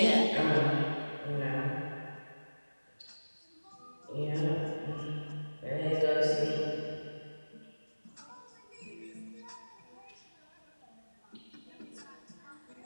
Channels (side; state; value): both; inverted; correlation -1.00